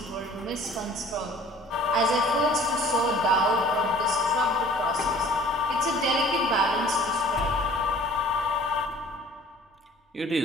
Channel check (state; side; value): normal; both; correlation 0.50